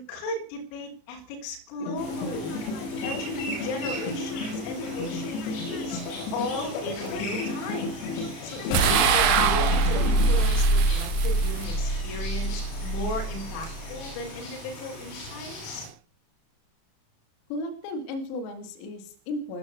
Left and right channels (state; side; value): late; right; 36 ms